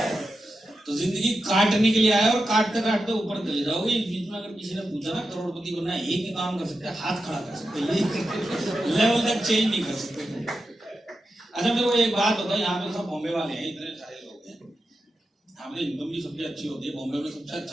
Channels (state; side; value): normal; both; correlation 0.89